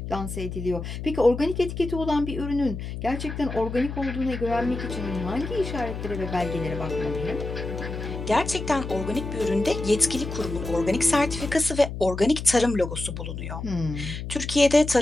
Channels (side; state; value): left; noise; hum, 7 dB below the sound